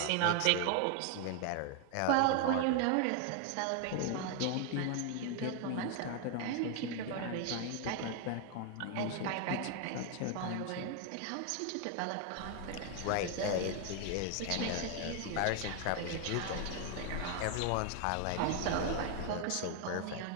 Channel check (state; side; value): different; both; correlation 0.01